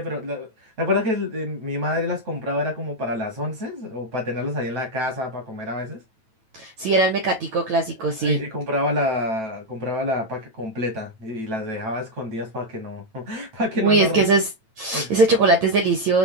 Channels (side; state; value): left; late; 9.1 ms